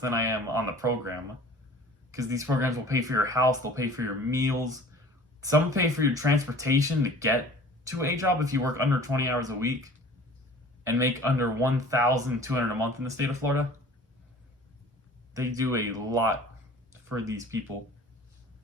I am on the program. Because these programs will pay for your house, they'll pay for your meals, some pay for your transportation to get to a job if you work under 20 hours a week and make under $1,200 a month in the state of Florida. They do a lot for these people.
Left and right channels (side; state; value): both; normal; correlation 0.46